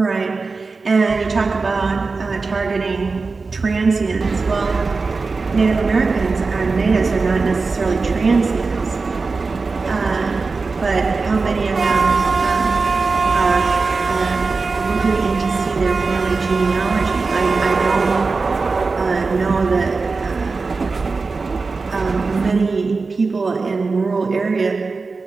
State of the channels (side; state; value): left; quieter; 4.2 dB